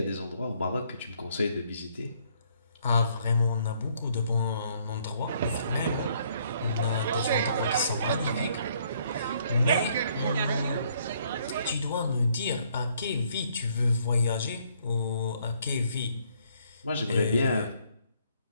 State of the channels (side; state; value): both; inverted; correlation -0.66